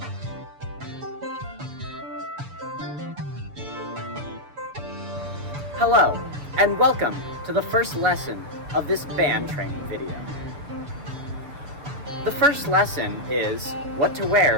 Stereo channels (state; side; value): late; left; 6.7 ms